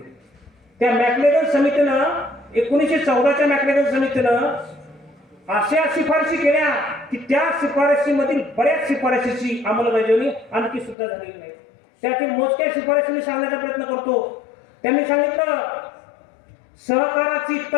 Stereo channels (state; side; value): drops out; right; at 11.0 s